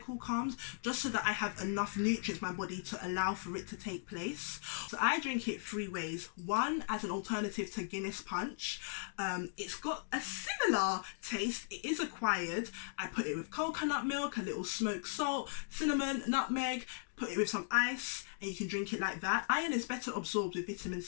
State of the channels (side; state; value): right; silent; digital silence